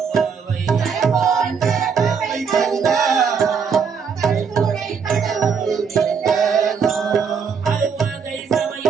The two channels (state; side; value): quieter; left; 6.2 dB